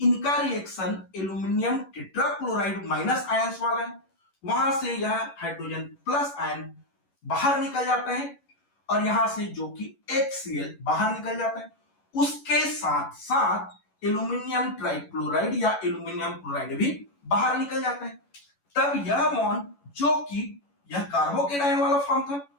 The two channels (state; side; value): late; right; 11 ms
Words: इनका reaction aluminium tetrachloride minus ions वाला है, वहां से यह हाइड्रोजन प्लस आयन बाहर निकल जाता है और यहां से जो कि HCl बाहर निकल जाता है, उसके साथ साथ एल्यूमिनियम ट्राइक्लोराइड या एल्यूमिनियम क्लोराइड भी बाहर निकल जाता है। तब यह बॉन्ड जो कि यह कार्बोकेट आयन वाला फॉर्म था